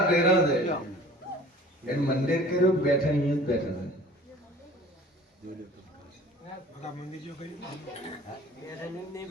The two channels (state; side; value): normal; both; correlation 0.46